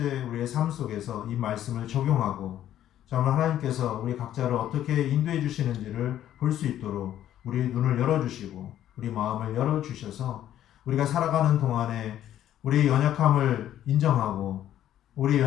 우리의 삶 속에서 이 말씀을 적용하고 정말 하나님께서 우리 각자를 어떻게 인도해 주시는지를 볼 수 있도록 우리 눈을 열어주시고 우리 마음을 열어주셔서 우리가 살아가는 동안에 우리의 연약함을 인정하고 우리의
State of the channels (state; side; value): quieter; right; 11.7 dB